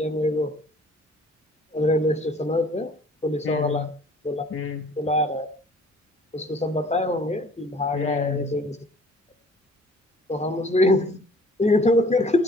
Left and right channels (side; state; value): both; normal; correlation 0.53